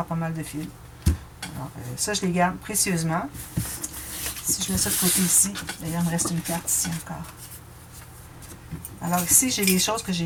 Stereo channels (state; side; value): identical; both; correlation 1.00